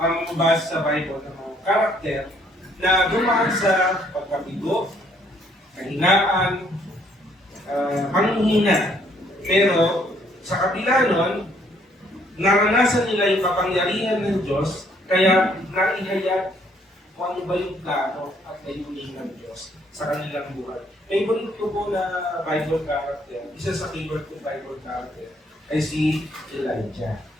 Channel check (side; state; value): both; normal; correlation 0.66